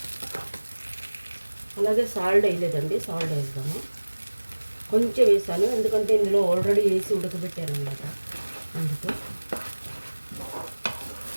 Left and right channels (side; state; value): both; inverted; correlation -1.00